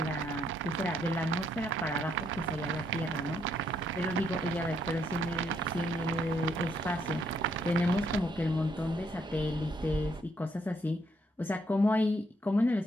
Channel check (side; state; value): both; normal; correlation 0.72